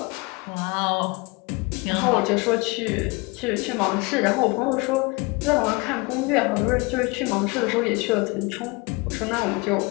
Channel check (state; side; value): quieter; right; 26.6 dB